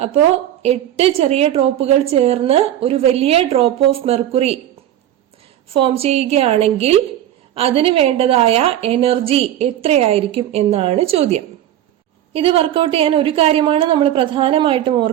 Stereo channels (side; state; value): left; quieter; 12.0 dB